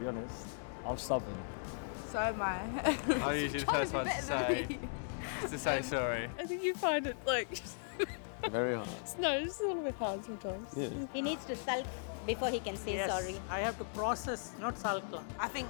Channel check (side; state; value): right; silent; digital silence